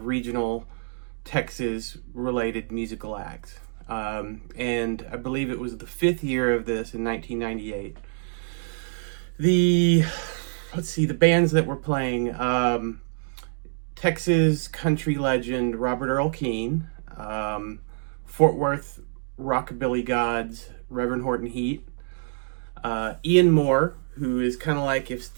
regional Texas-related musical acts. And I believe it was the fifth year of this in 1998. The bands that were playing, Texas country legend Robert Earl Keen, Fort Worth rockabilly gods Reverend Horton Heat, Ian Moore, who is kind of like if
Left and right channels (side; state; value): left; silent; digital silence